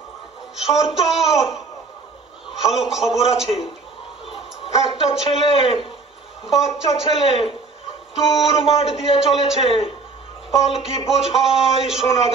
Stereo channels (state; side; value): quieter; left; 4.2 dB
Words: সর্দার, ভালো খবর আছে। একটা ছেলে, বাচ্চা ছেলে দূর মাঠ দিয়ে চলেছে, পালকি বোঝাই সোনা